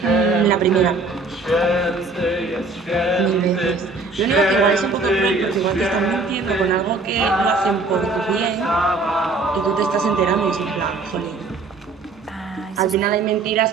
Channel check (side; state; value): left; quieter; 3.7 dB